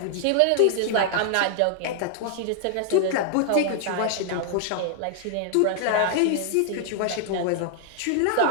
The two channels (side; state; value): both; different; correlation 0.00